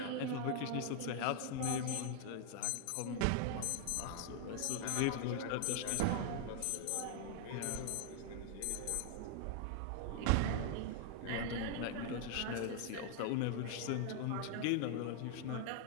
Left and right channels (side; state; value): both; different; correlation 0.00